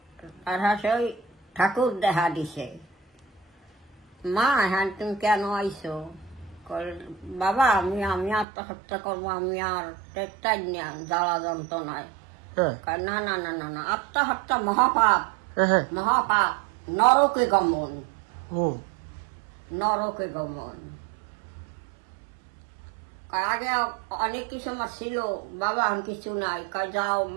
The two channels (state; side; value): drops out; left; at 8.5 s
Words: আর ওই ঠাকুর দেখা দিছে, মা হ্যাঁ তুমি কেন আইসো? বাবা আমি আমি আত্মহত্যা করবো, আমি আর টেকটাই না জ্বালা যন্ত্রণায়। না না না না না, আত্মহত্যা মহাপাপ, মহাপাপ, নরকে গমন, নরকে গমন। আগে অনেক কিছু আমার ছিল, বাবা আমি কিছু নাই, যাও